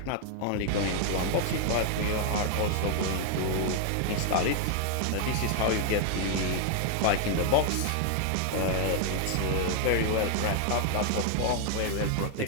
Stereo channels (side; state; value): both; different; correlation 0.00